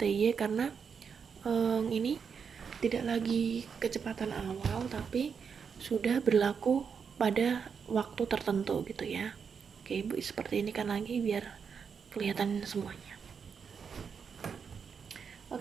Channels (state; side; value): quieter; left; 6.4 dB